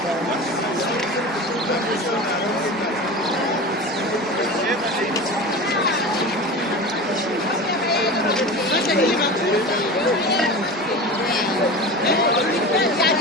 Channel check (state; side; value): normal; both; correlation 0.31